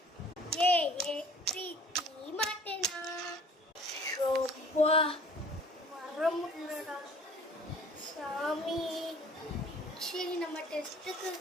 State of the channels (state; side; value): normal; both; correlation 0.51